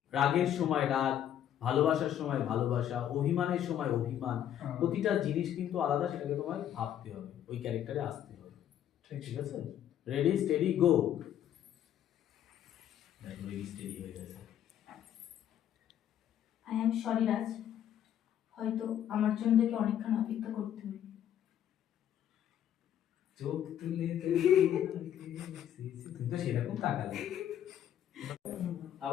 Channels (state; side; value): quieter; right; 10.5 dB